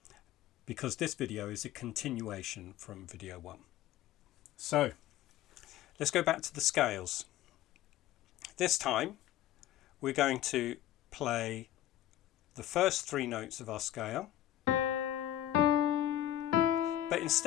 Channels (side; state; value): right; quieter; 12.9 dB